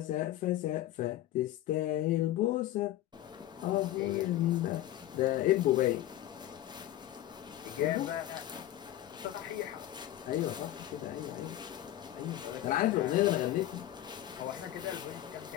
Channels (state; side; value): quieter; right; 13.6 dB